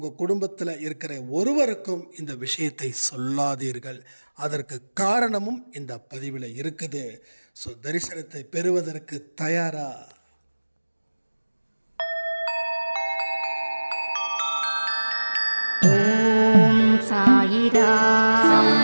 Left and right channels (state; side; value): inverted; both; correlation -1.00